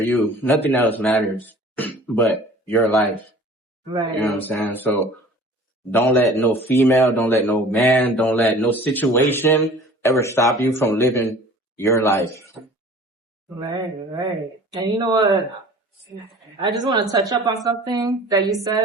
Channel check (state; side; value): normal; both; correlation 0.46